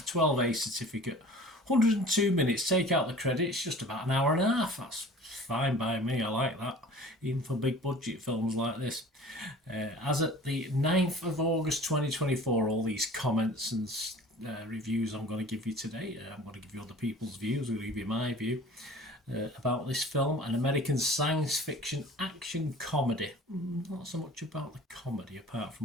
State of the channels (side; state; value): both; normal; correlation 0.44